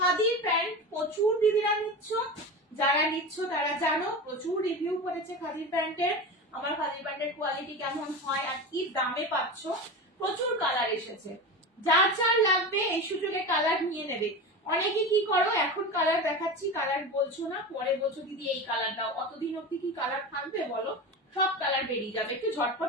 প্যান্ট প্রচুর দিদিরা নিচ্ছ, যারা নিচ্ছ তারা জানো, প্রচুর রিভিউ করেছে খাদির প্যান্টের, আমার খাদির প্যান্টের কোয়ালিটি কেমন হয় আর কি দামে পাচ্ছ, প্রচুর কালার এসেছে, যার যার লাগবে এই সুযোগে কালার নিয়ে নেবে। অনেকে কি করো, এখন কালার দেখাচ্ছি কালার বলছো না, পরে বলছো দিদি এই কালার দাও, অতদিন অব্দি কি কালার থাকবে বলো, সব কালার বেরিয়ে যাবে, একটু ঝটপট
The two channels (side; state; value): both; normal; correlation 0.26